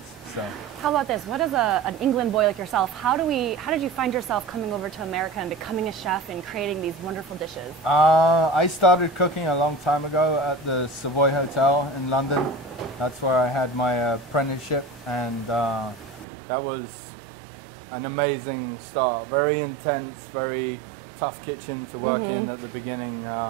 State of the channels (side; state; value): left; drops out; at 16.2 s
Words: So. How about this? What is an England boy like yourself? How did you find yourself coming over to America and becoming a chef and creating these wonderful dishes? I started cooking a long time ago at the Savoy Hotel in London. That's where I had my apprenticeship, and that was an amazing start. Very intense, very tough kitchen to work in at the beginning.